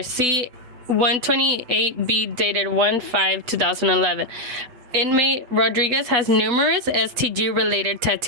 See 128B dated 1/5/2011. Inmate Rodriguez has numerous STG-related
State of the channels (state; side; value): late; left; 8.1 ms